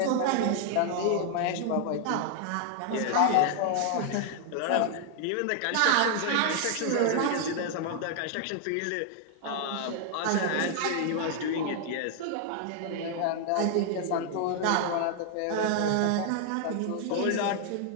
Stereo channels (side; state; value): both; different; correlation 0.00